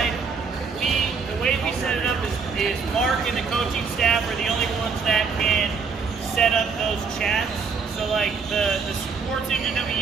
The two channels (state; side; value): quieter; left; 5.3 dB